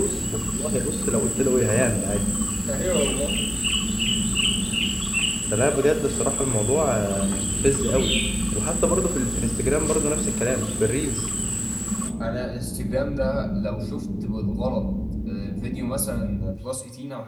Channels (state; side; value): identical; both; correlation 1.00